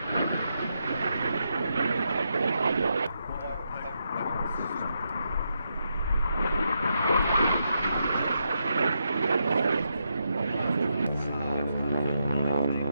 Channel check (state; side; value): inverted; both; correlation -0.82